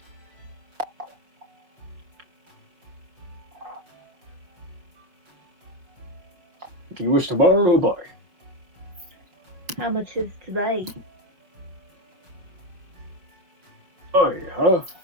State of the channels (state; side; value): late; left; 5.3 ms